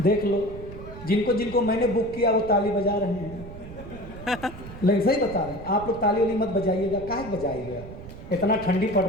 लो, जिनको जिनको मैंने बुक किया वो ताली बजा रहे हैं। लेकिन सही बता रहे हैं, आप लोग ताली वाली मत बजाइएगा। काहे बजाइएगा, इतना ठंडी पड़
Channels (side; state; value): right; noise; rumble, 13 dB below the sound